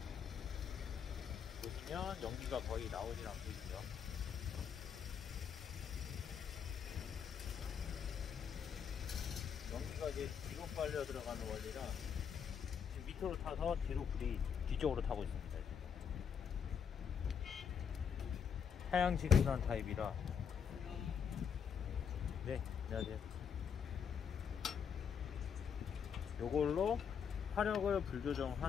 보시면 연기가 거의 나오질 않고 있죠. 연기가 이제 뒤로 빨려 들어가는 원리라 지금 밑으로 타서 뒤로 불이 뒤쪽으로 타고 있습니다. 하향지근한 타입이라. 네, 안녕하세요. 요걸로 화력을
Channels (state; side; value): quieter; right; 7.4 dB